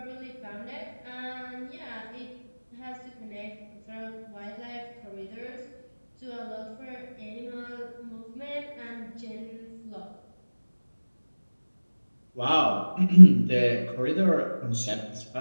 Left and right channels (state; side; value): inverted; both; correlation -1.00